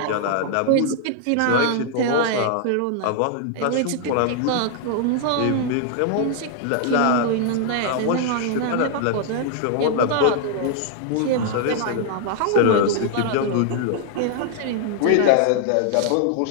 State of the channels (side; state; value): both; different; correlation 0.00